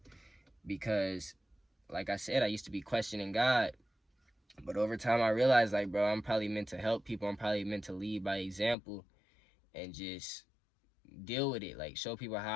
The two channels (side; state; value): right; drops out; at 8.8 s